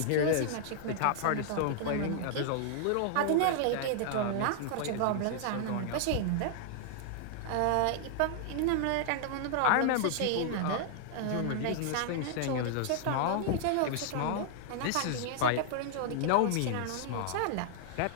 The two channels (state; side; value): different; both; correlation -0.01